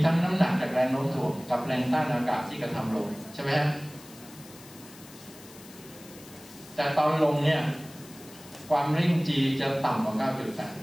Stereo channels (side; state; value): left; noise; hiss, 20 dB below the sound